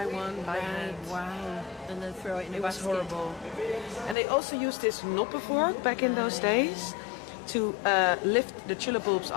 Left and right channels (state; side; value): drops out; right; at 4.2 s